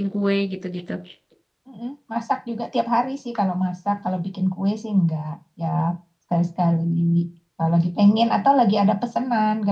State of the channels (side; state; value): both; identical; correlation 1.00